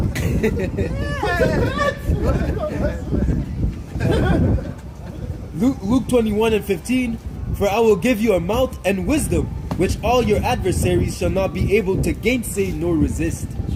Luke 21:15. For I will give you a mouth and wisdom, which all your adversaries shall not be able to gainsay nor resist.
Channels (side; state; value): both; identical; correlation 1.00